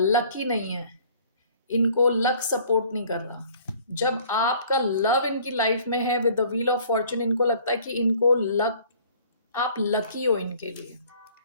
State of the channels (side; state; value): both; inverted; correlation -0.54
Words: नहीं है, इनको लक सपोर्ट नहीं कर रहा। जब आपका लव इनकी लाइफ में है with the wheel of Fortune, इनको लगता है कि इनको लक, आप लकी हो इनके लिए।